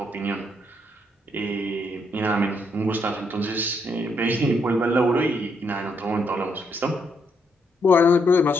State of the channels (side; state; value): both; normal; correlation 0.75